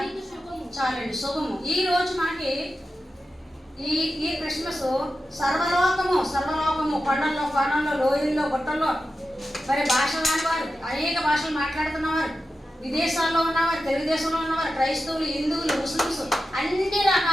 చాలండి, శుభము. ఈ రోజు మనకి ఈ క్రిస్మస్ సర్వలోకము కొండల్లో కోణంలో లోయల్లో గుట్టల్లో మరి భాషలు రానివారు, అనేక భాషలు మాట్లాడుతున్నవారు, విదేశాల్లో ఉన్నవారు, తెలుగుదేశంలో ఉన్నవారు, క్రైస్తవులు, హిందువులు, ముస్లిమ్స్, అన్ని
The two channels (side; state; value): both; normal; correlation 0.91